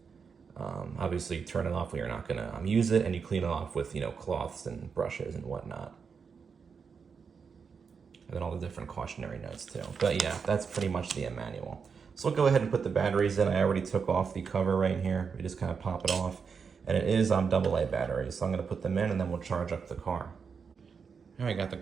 Obviously, turn it off when you're not going to use it, and you clean it off with, cloths and brushes and whatnot. And then all the different cautionary notes too. But yeah, that's pretty much the manual. So we'll go ahead and put the batteries in. I already took off the cover right here. We just kind of pop it off. And it is on AA batteries. So I'm going to put them in and then we'll charge up the car. All right, got the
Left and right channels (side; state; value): left; quieter; 5.9 dB